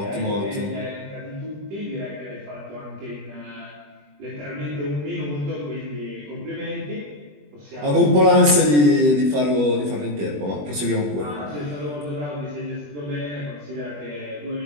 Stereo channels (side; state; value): left; late; 20 ms